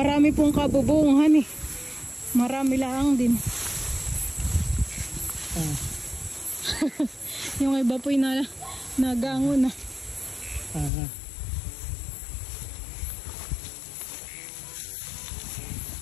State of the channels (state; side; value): drops out; right; at 10.9 s